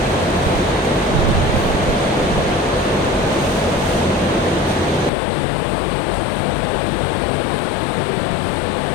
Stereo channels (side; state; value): right; drops out; at 5.1 s